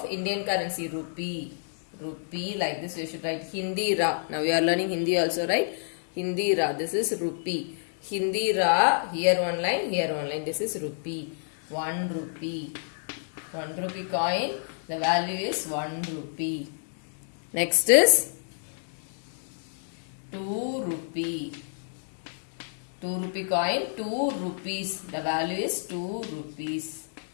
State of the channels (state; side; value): silent; right; digital silence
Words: Indian currency? Rupee. Rupee, like this you should write Hindi ra. Now we are learning Hindi also, right? Hindi ra. This is rupee. Hindi ra. Here one line, here one line. This is rupee. 1 rupee. 1 rupee coin. The value is 1 rupee. Next is 2 rupee. 2 rupee coin. 2 rupees. The value is 2 rupees.